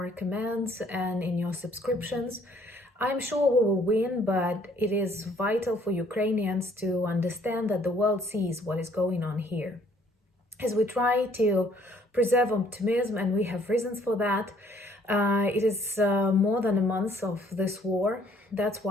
comments and in your subscriptions. I'm sure we will win, but it is vital for Ukrainians to understand that the world sees what is going on here. As we try to preserve optimism, and we have reasons for that, it is more than a month of this war. That's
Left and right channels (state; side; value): normal; both; correlation 0.62